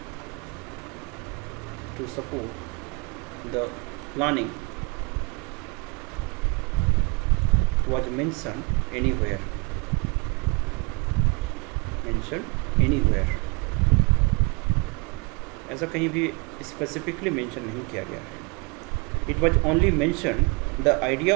planning, was mentioned anywhere. ऐसा कहीं भी specifically mention नहीं किया गया है. It was only mention the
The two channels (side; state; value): left; quieter; 30.3 dB